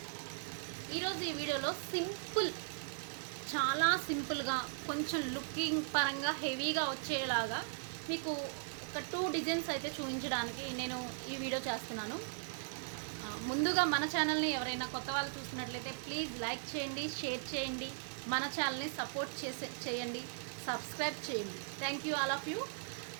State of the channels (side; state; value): left; silent; digital silence